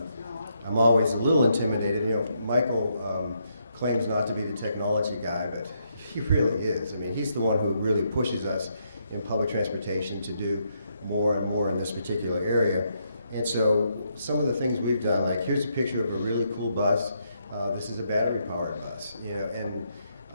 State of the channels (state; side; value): inverted; both; correlation -0.77